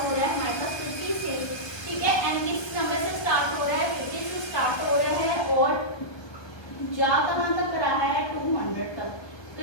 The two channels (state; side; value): late; right; 1.2 ms